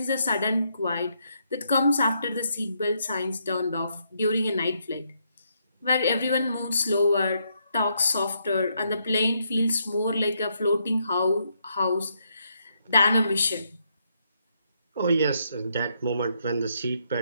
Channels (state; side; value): inverted; both; correlation -0.76